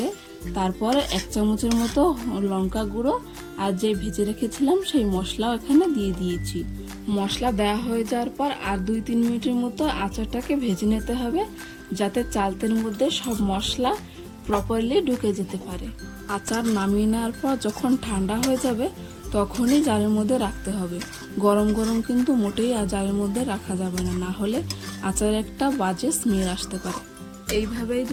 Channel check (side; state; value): both; identical; correlation 1.00